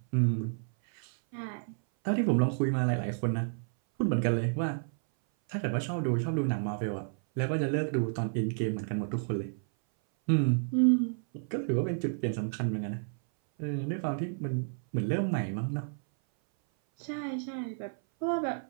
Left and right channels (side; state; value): left; silent; 57 dB below the other